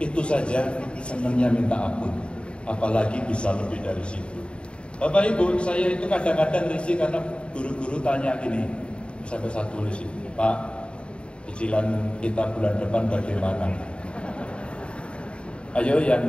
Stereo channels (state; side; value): late; right; 0.056 ms